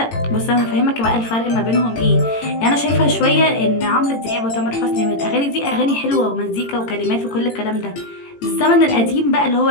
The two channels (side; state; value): right; late; 18 ms